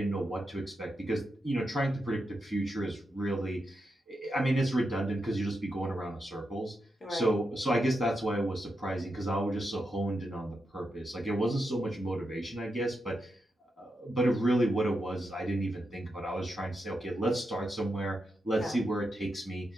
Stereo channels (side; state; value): both; normal; correlation 0.86